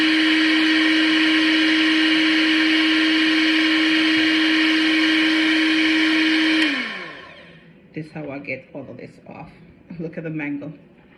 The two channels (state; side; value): identical; both; correlation 1.00